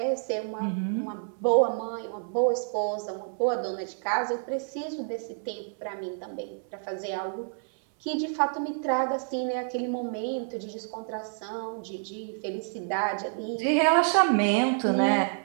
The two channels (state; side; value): silent; left; 59 dB below the other